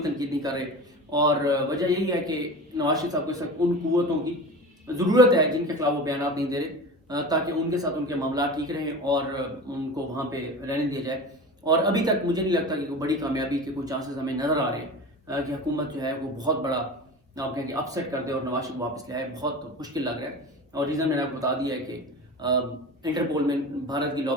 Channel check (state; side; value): normal; both; correlation 0.32